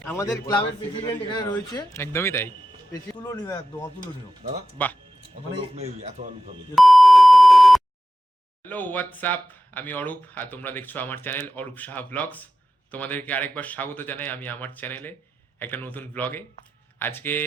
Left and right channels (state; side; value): normal; both; correlation 0.93